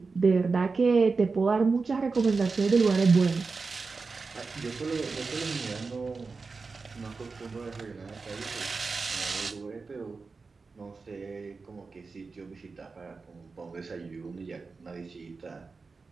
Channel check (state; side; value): quieter; left; 4.3 dB